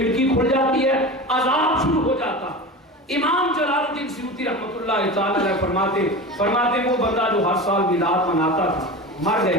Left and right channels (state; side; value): normal; both; correlation 0.29